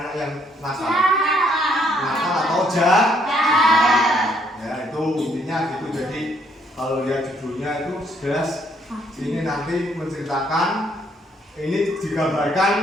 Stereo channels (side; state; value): both; normal; correlation 0.68